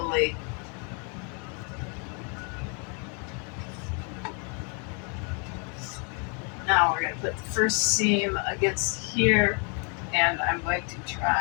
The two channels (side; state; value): right; quieter; 37.4 dB